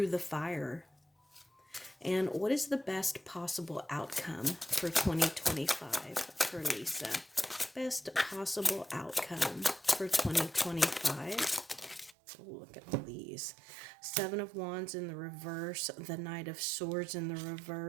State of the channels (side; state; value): left; drops out; at 12.2 s